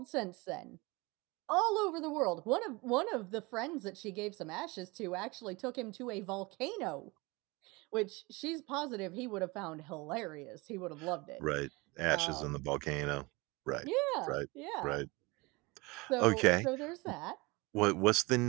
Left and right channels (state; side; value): quieter; left; 24.7 dB